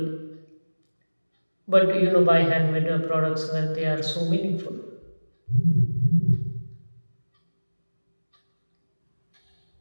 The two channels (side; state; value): both; inverted; correlation -1.00